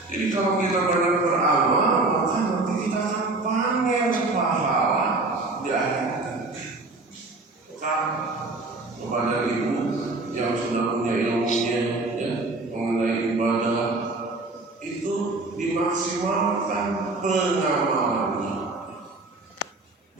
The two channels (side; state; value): left; quieter; 3.2 dB